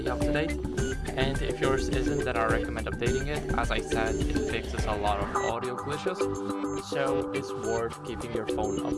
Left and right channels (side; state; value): both; identical; correlation 1.00